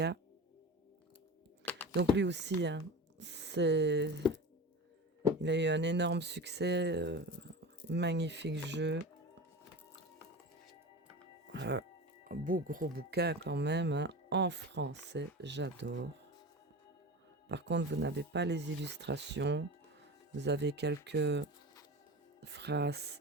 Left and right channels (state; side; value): normal; both; correlation 0.30